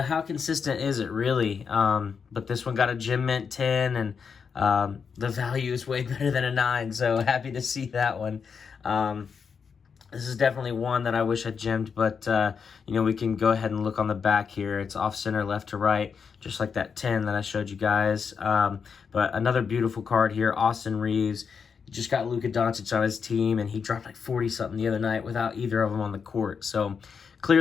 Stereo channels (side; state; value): right; quieter; 6.1 dB